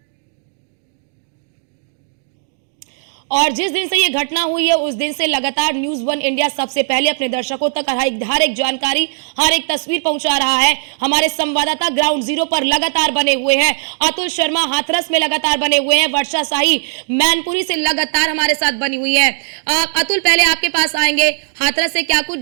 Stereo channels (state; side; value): silent; left; 68 dB below the other